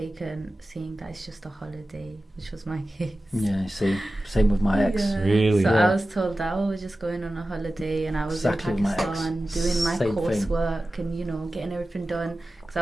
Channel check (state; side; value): normal; both; correlation 0.95